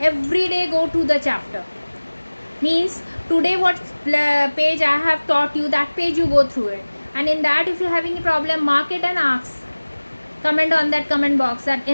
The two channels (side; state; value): both; inverted; correlation -1.00